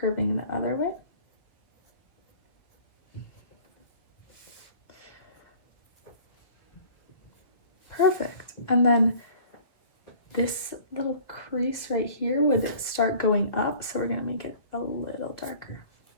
the other way. Perfect. And then this little crease right here would start going up, so we're gonna make it a little darker.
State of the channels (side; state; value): right; late; 1.5 ms